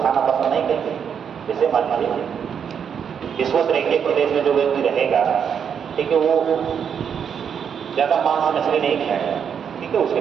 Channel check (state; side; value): quieter; left; 7.6 dB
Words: खाना पसंद नहीं करते। जैसे मान लीजिए विश्व रेखीय प्रदेश में जो व्यक्ति रहेगा, ठीक है, वो ज़्यादा मांस मछली नहीं खाएगा। ठीक है, उसके